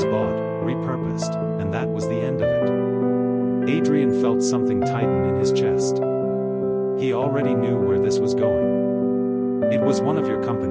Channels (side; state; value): both; identical; correlation 1.00